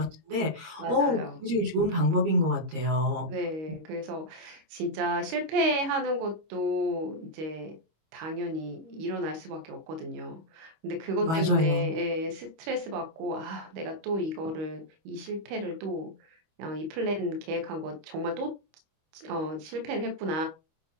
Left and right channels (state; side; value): late; left; 25 ms